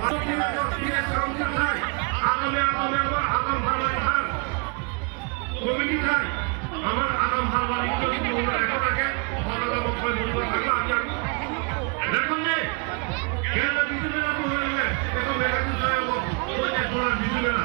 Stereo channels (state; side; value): quieter; left; 34.6 dB